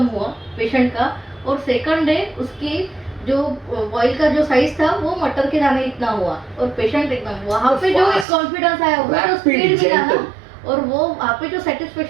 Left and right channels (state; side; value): drops out; left; at 8.2 s